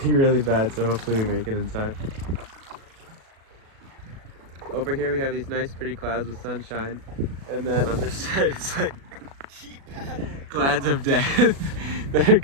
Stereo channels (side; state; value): left; late; 37 ms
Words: really bad, so hopefully we make it in time. Over here we have these nice pretty clouds with sunshine, and then on this side it's like clouds of death that are